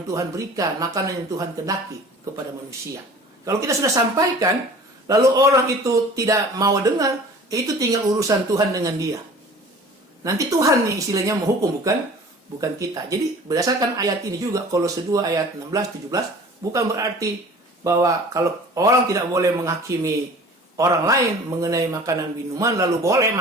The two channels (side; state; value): both; normal; correlation 0.45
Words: Tuhan berikan, makanan yang Tuhan kehendaki kepada manusia. Kalau kita sudah sampaikan, lalu orang itu tidak mau dengar, itu tinggal urusan Tuhan dengan dia. Nanti Tuhan nih istilahnya menghukum, bukan kita. Jadi berdasarkan ayat ini juga, Kolose 2 ayat 16-17, bukan berarti bahwa kalau orang tidak boleh menghakimi orang lain mengenai makanan minuman lalu boleh